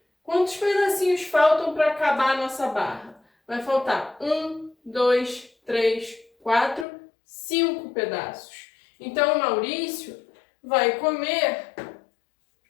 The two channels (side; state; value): right; drops out; at 6.9 s